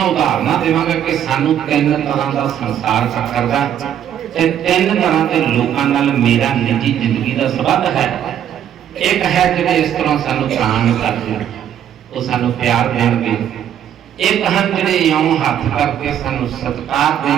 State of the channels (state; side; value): quieter; left; 9.9 dB